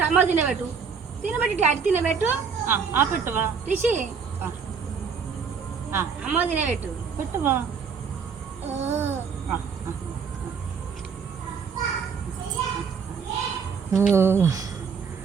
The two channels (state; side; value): quieter; left; 6.1 dB